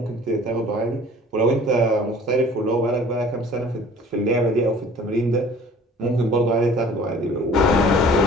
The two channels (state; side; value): normal; both; correlation 0.49